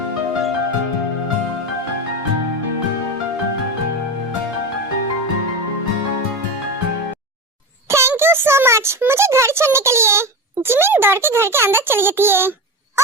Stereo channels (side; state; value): both; normal; correlation 0.21